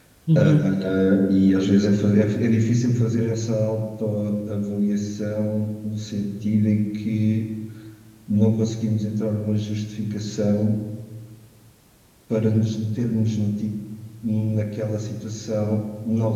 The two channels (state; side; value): identical; both; correlation 1.00